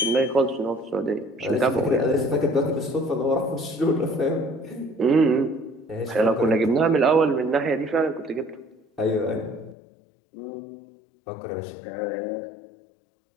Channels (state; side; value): drops out; right; at 9.8 s